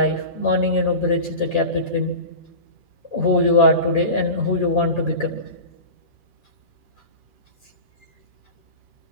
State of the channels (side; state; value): left; late; 2.4 ms